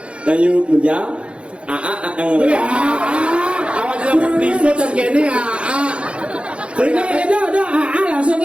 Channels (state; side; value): late; left; 0.059 ms